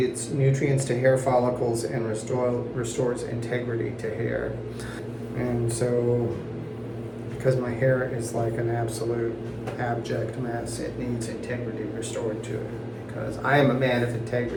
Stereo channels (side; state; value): both; identical; correlation 1.00